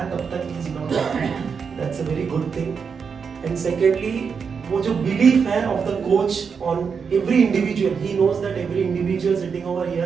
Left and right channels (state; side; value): quieter; left; 6.1 dB